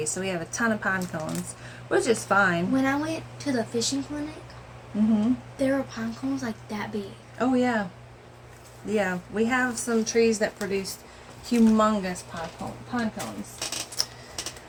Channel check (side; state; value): both; identical; correlation 1.00